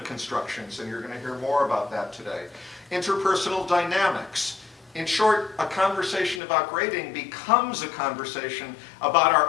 constructions, and you're going to hear more about that today, interpersonal dynamics. In short, a conversation about grading becomes a conversation about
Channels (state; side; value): drops out; right; at 6.4 s